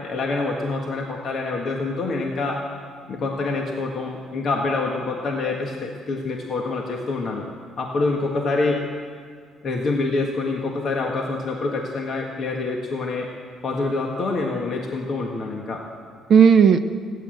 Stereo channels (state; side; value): normal; both; correlation 0.68